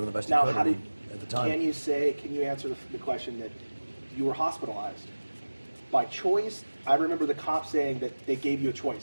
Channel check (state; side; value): inverted; both; correlation -1.00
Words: the best Now, he could at the time. can you answer the question that you were hospitalized by choice? I remember the cop saying that they gave you a